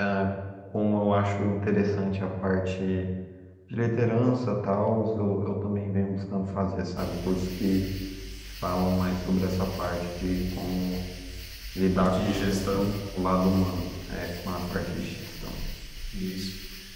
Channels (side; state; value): both; identical; correlation 1.00